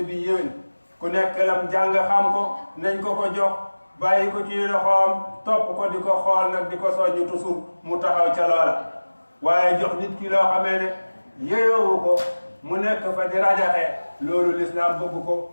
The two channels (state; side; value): inverted; both; correlation -1.00